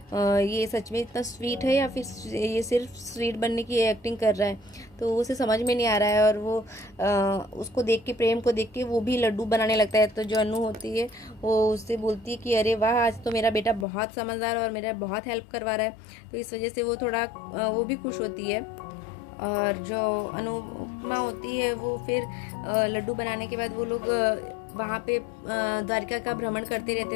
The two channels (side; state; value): right; drops out; at 13.9 s